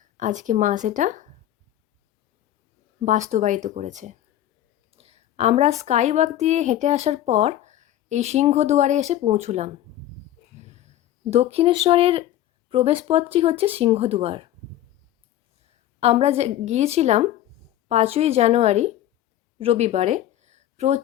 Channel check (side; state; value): right; quieter; 12.8 dB